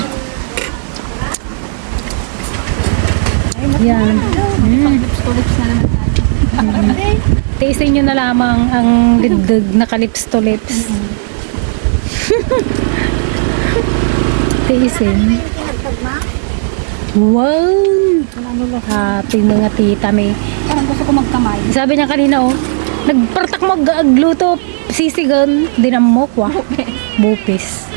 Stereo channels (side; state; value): left; silent; digital silence